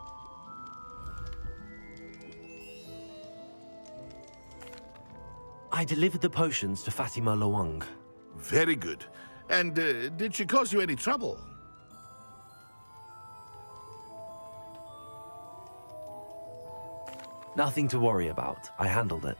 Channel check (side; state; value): both; inverted; correlation -1.00